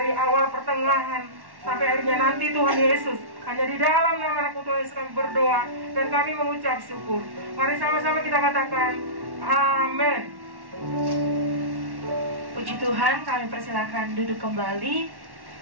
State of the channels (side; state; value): left; late; 1.1 ms